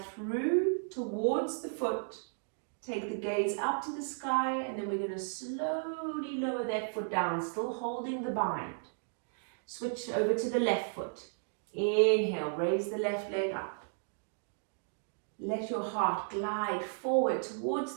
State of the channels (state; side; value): silent; left; digital silence